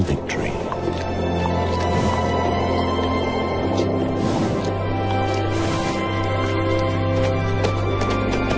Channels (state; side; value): identical; both; correlation 1.00